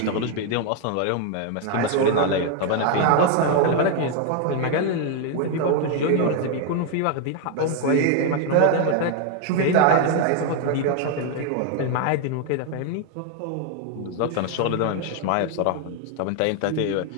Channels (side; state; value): both; different; correlation 0.00